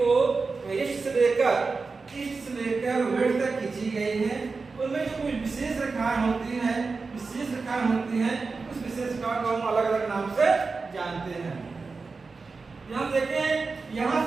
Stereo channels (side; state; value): left; quieter; 4.3 dB